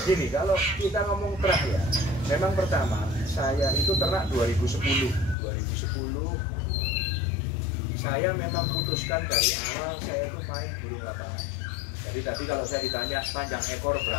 Gini, kalau kita ngomong terah ya, memang pertama saya itu ternak 2010 saya memang putuskan dari awal saya itu main burung lapangan. Jadi tadi kalau saya ditanya panjang ekor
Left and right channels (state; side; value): drops out; right; at 5.4 s